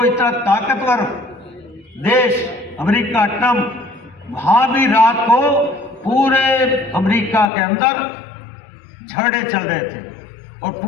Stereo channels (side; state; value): right; drops out; at 7.5 s